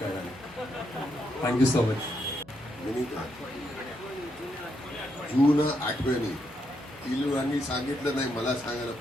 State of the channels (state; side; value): noise; left; hum, 26 dB below the sound